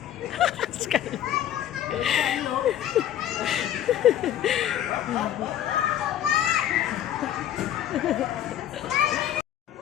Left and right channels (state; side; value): quieter; right; 11.2 dB